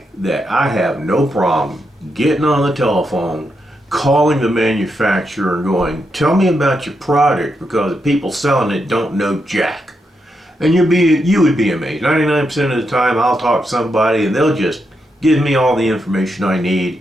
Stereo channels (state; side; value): normal; both; correlation 0.83